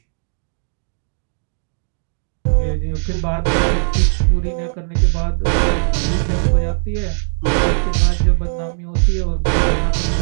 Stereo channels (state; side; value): silent; left; digital silence